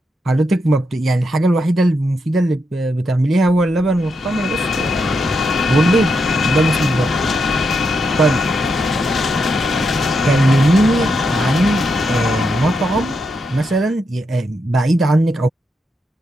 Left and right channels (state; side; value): normal; both; correlation 0.82